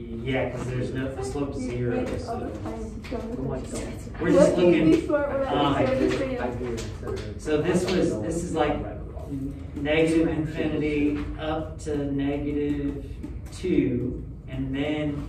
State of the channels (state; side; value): identical; both; correlation 1.00